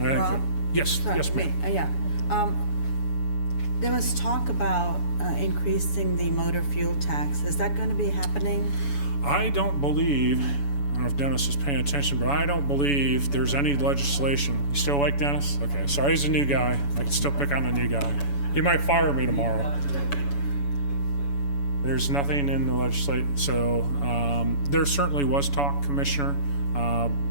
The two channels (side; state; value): right; late; 7.1 ms